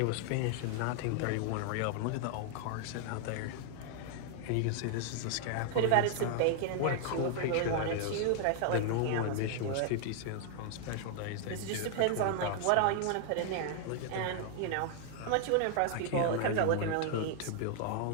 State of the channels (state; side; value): different; both; correlation 0.00